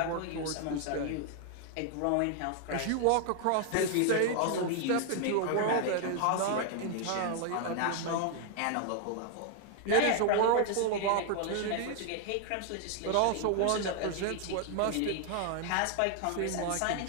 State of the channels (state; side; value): different; both; correlation 0.00